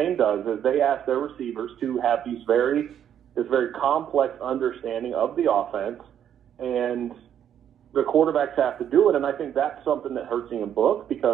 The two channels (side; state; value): left; quieter; 9.6 dB